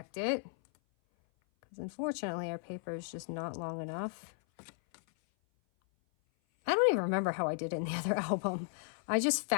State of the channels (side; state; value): right; silent; 54 dB below the other